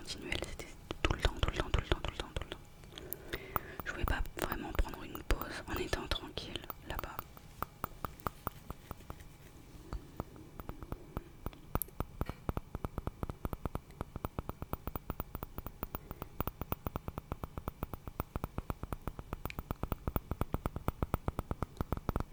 c'était tout le temps. Je pouvais pas vraiment prendre une pause en étant tranquille là-bas.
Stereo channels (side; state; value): both; identical; correlation 1.00